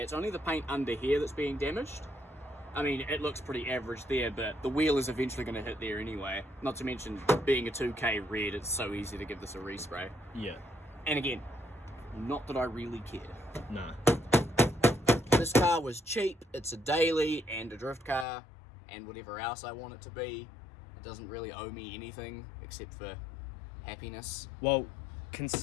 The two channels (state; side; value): drops out; right; at 18.2 s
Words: it's only the paint under here that's being damaged. I mean, it looks pretty average there, but the wheel is eventually going to hit there anyway. Not to mention, being a 2K red, it's so easy to give this a respray. Yeah. And again, not that I really care. No. This car was cheap, it's a daily and a drift car, and whatever else I want it to be. It doesn't really owe me anything except for happiness. Well,